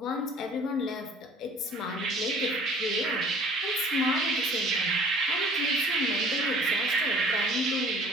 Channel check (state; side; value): normal; both; correlation 0.51